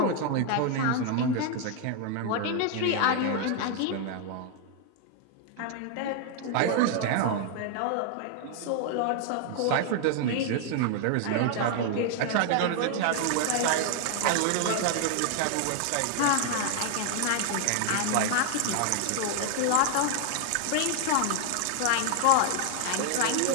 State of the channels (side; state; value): both; different; correlation 0.00